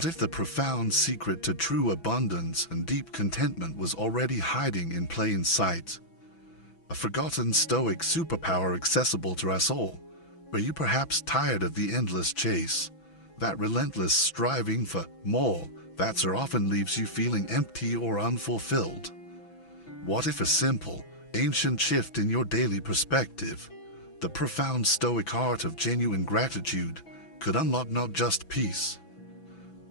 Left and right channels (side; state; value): right; late; 6.0 ms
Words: if the profound secret to true abundance and deep contentment was already hiding in plain sight? A forgotten Stoic superpower accessible to us all. Are you perhaps tired of the endless chase? That relentless striving for more that so often leaves you feeling empty or unfulfilled? What if a simple, ancient shift in your daily perspective, the profound Stoic art of genuine gratitude, could unlock not just peace,